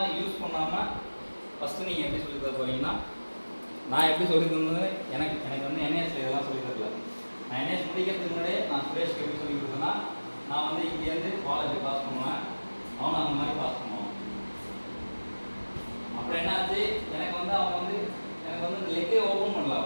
யூஸ் பண்ணாமல் ஃபஸ்ட்டு நீங்கள் எப்படி சொல்லி தர போகிறீங்கன்னா, நான் எப்படி சொல்லி தந்தது, எனக்கு வந்து என்ஏஎஸ்ல இதெல்லாம் சொல்லி தரல. நான் என்ஏஎஸ் முடிக்கிறதுக்கு முன்னாடியே நான் சுரேஷ்க்கு எப்படி சொல்லி கொடுத்தேன்னா, நான் வந்து இங்கேருந்து காலேஜ் பாஸ் பண்ணுவேன், அவனை அந்த மாதிரி பாஸ் பண்ணுவான். அப்புறம் என்னாச்சு, எனக்கு வந்து இந்த லெக்கே ஓப்பன்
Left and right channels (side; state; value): both; inverted; correlation -1.00